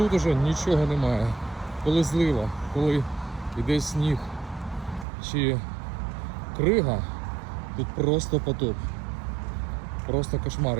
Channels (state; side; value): drops out; left; at 5.1 s